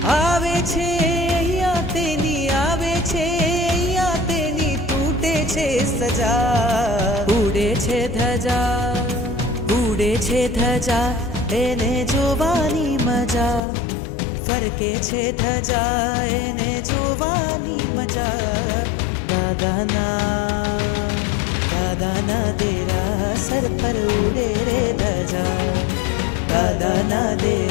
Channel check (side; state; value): right; drops out; at 13.6 s